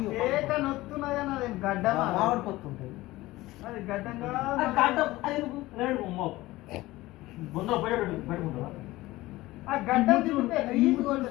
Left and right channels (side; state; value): right; quieter; 18.4 dB